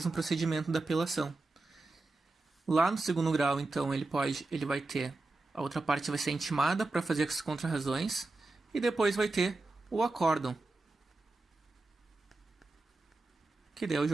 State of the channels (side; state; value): left; quieter; 3.2 dB